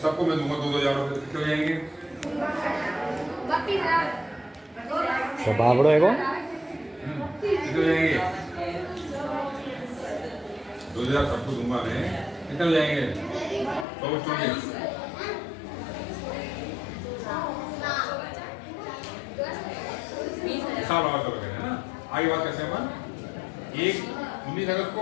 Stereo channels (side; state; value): right; drops out; at 13.9 s